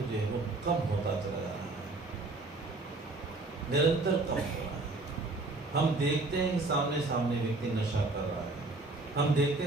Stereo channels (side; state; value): left; quieter; 3.2 dB